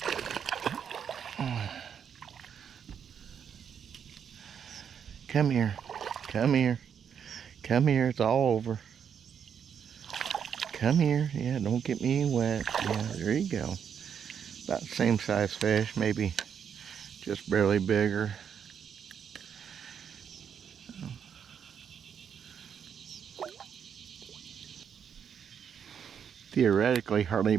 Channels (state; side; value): quieter; left; 7.8 dB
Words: Come here. Come here. Come here. It's all over. Come here. Yeah, don't get me wet. Yeah, there you go. About the same size fish, maybe just barely bigger. Theoretically, hardly